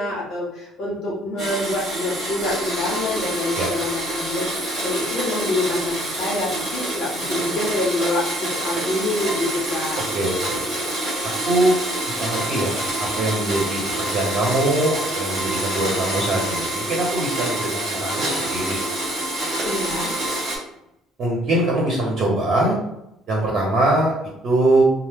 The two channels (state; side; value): normal; both; correlation 0.62